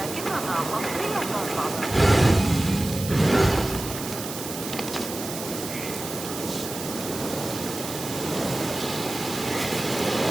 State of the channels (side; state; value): right; noise; hiss, 8 dB below the sound